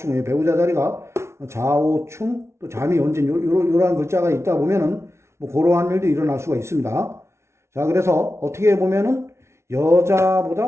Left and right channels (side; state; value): left; late; 0.13 ms